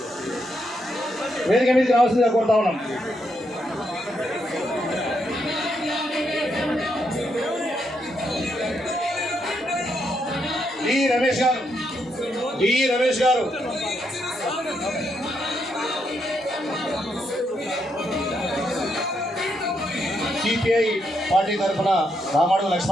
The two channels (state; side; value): normal; both; correlation 0.79